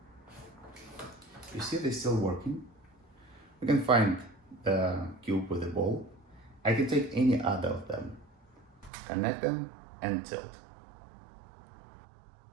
You see they're still working. We can find the cube with the ball. I can take any other of them, connect them and tilt.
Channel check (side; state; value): left; drops out; at 8.9 s